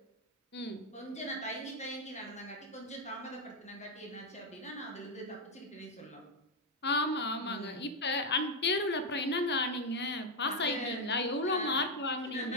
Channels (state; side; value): normal; both; correlation 0.03